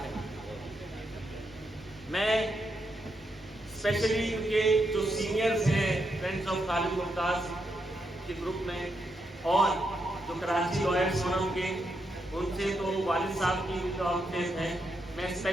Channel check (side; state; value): both; normal; correlation 0.82